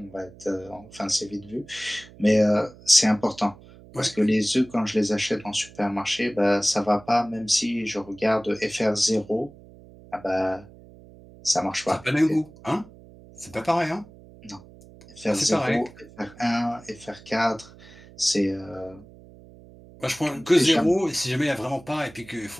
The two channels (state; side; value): noise; right; hum, 21 dB below the sound